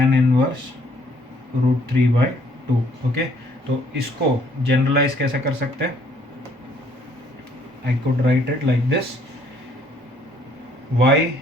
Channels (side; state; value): both; normal; correlation 0.63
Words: inverse root 3/2. Okay, तो इसको जनरलाइज कैसे कर सकते हैं, I could write it like this, y